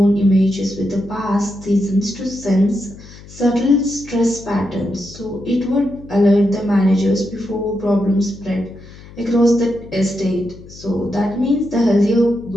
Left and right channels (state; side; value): noise; left; hum, 19 dB below the sound